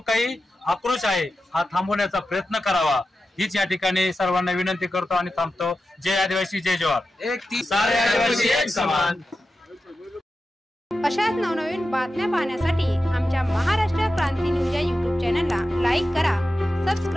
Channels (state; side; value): normal; both; correlation 0.92